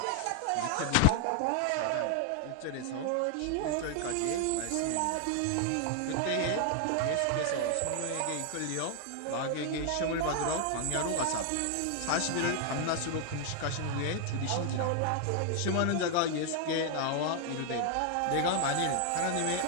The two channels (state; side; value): different; both; correlation 0.00